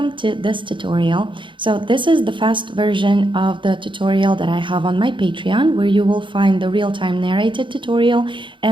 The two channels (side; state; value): left; late; 0.24 ms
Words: to this tutorial. So this is the fast version of the tutorial that I have on my Patreon, where you will find the real-time narrated tutorial